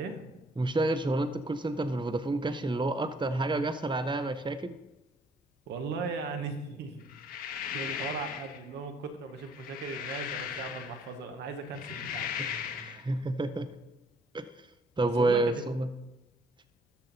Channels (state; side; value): normal; both; correlation 0.62